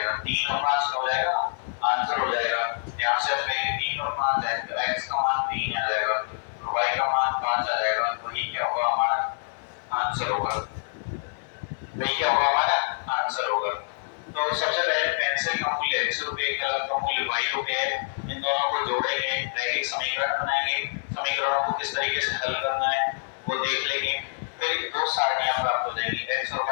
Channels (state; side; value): silent; right; 59 dB below the other